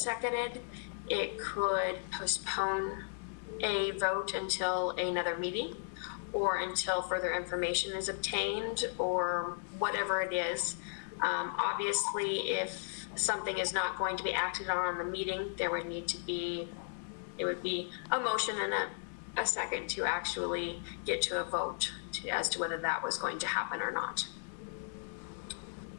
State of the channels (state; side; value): silent; right; digital silence